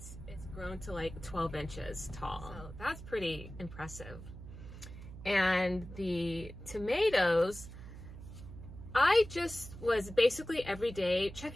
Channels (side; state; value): right; noise; hum, 13 dB below the sound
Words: grown to like 12 inches tall. So that's pretty impressive. And the tomatoes, I just was basically every day